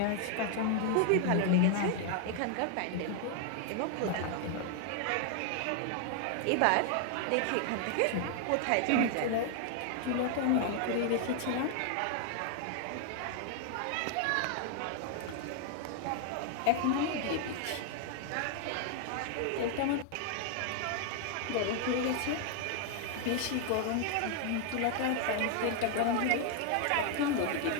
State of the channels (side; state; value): both; different; correlation 0.00